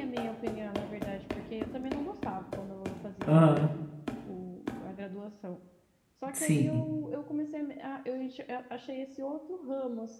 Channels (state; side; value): identical; both; correlation 1.00